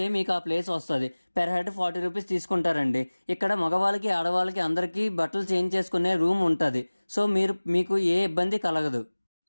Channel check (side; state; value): both; inverted; correlation -1.00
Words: మీకు ఆ ప్లేస్ వస్తుంది. పెర్ హెడ్ 40 రూపీస్ తీసుకుంటారండి. ఇక్కడ మగవాళ్ళకి ఆడవాళ్ళకి అందరికీ బట్టలు చేంజ్ చేసుకునే రూమ్ ఉంటుంది. సో మీకు ఏ ఇబ్బంది కలగదు.